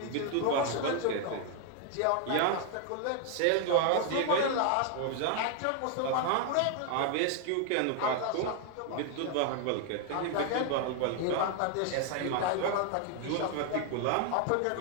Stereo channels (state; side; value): different; both; correlation 0.00